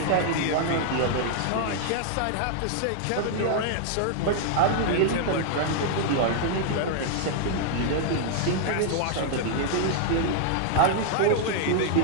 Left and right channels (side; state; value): both; different; correlation -0.01